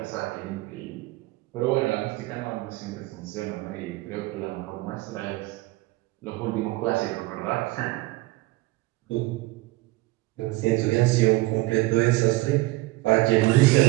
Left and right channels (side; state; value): left; quieter; 20.3 dB